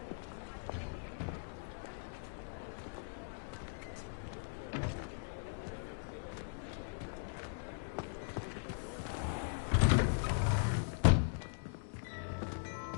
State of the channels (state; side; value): silent; right; digital silence